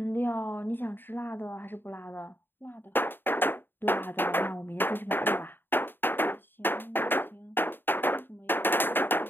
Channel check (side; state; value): right; late; 0.097 ms